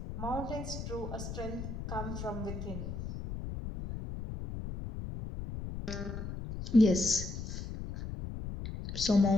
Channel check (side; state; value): left; noise; rumble, 6 dB below the sound